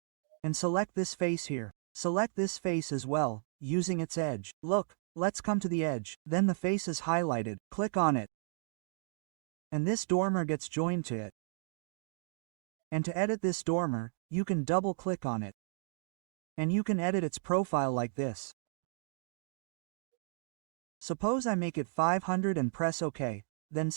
And select this face here. Select this face as well, using its edge. Look, let's come to the edge. Then the face is highlighted. Click on it. And this dormer gets joined to it. And to edit this dormer, you can double-click on it. And you can edit its profile like this. Suppose I make it 500 and press OK, then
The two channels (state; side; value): silent; left; digital silence